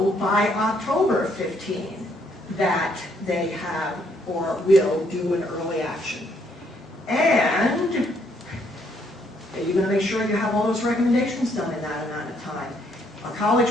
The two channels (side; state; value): both; normal; correlation 0.70